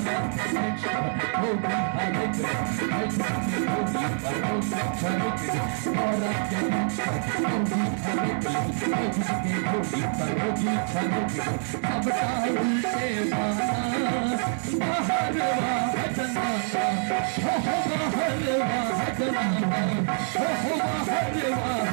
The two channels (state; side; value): silent; left; 61 dB below the other